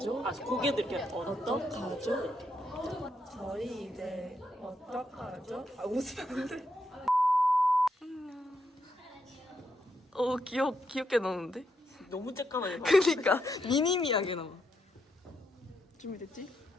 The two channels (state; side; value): normal; both; correlation 0.80